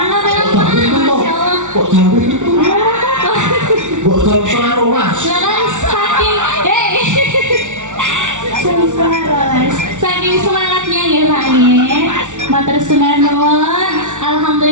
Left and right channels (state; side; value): late; left; 0.86 ms